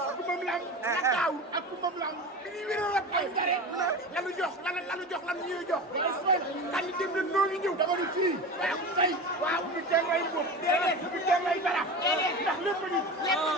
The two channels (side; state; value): both; normal; correlation 0.28